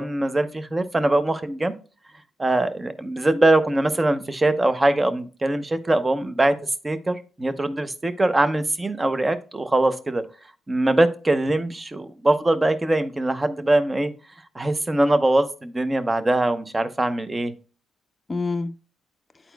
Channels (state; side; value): normal; both; correlation 0.96